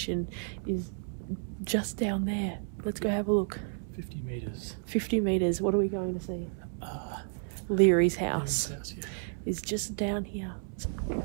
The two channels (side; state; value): left; silent; 57 dB below the other